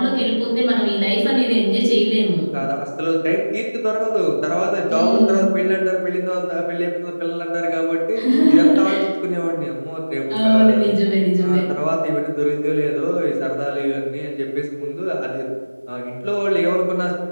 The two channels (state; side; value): inverted; both; correlation -1.00